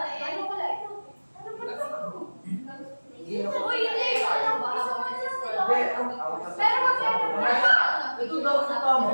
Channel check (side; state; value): both; inverted; correlation -1.00